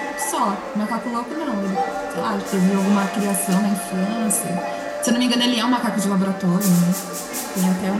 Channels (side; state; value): both; identical; correlation 1.00